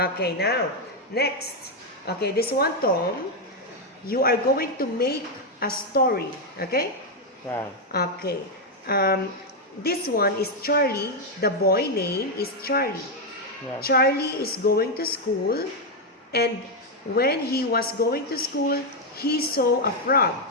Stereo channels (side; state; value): both; normal; correlation 0.02